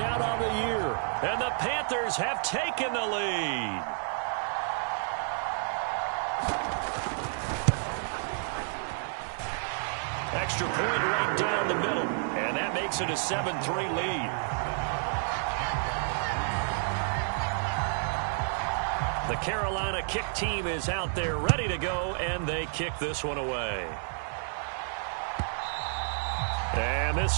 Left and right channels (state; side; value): silent; left; 58 dB below the other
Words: on the year. And the Panthers have taken the lead. Extra point right down the middle. And that makes it a 7-3 lead. The Carolina kick team is out there ready to go, and they kick this one away. And